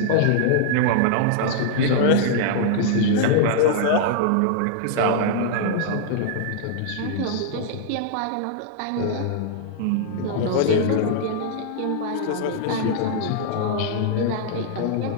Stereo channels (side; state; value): both; different; correlation -0.01